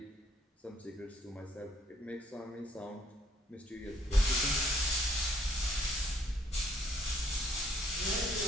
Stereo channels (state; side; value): normal; both; correlation 0.64